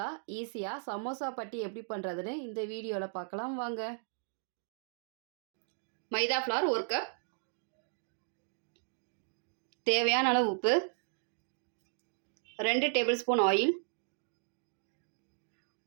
ஈஸியாக சமோசா பட்டி எப்படி பண்ணுறதுன்னு இந்த வீடியோவில் பார்க்கலாம் வாங்க. மைதா ஃப்ளார் 1 கப், தேவையான அளவு உப்பு, 2 table spoon oil,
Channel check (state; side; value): silent; left; digital silence